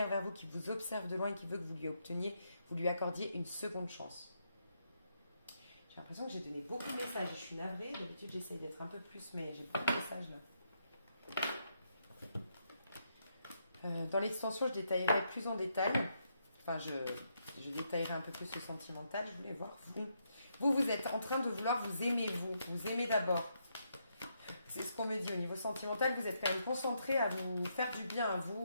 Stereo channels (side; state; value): both; inverted; correlation -0.78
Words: vers vous, qui vous observe de loin et qui veut que vous lui accordiez une seconde chance. J'ai l'impression que j'ai donné beaucoup de messages, je suis navrée, d'habitude j'essaye d'être un peu plus, mais j'ai beaucoup de messages là. Dans l'extension, je détaillerai plus en détail. Enfin, je détaillerai un peu plus le sentimental. Je voulais voir vous. Vous êtes en train de vouloir vous aimer, vous aimez d'abord. C'est ce qu'on me dit au niveau sentimental. Vous êtes quand même concentré à vous faire du bien à